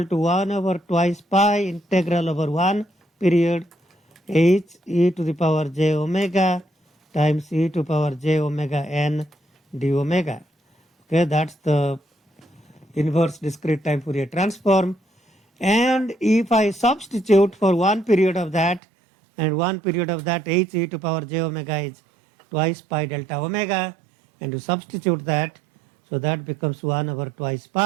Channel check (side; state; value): left; drops out; at 18.8 s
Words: to 1 over twice pi integral over 1 period h e to the power j omega times e to power j omega n d omega. Okay, that's the inverse discrete time Fourier transform. And if I substitute for one period of that and one period of that, h e to power j omega is twice pi delta omega, and you substitute that, so that becomes 1 over twice